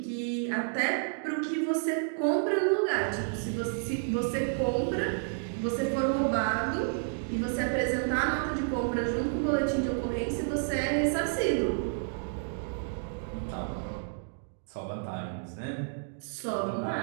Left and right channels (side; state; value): left; silent; digital silence